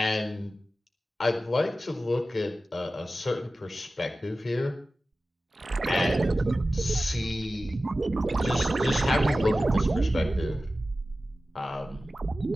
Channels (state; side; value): normal; both; correlation 0.95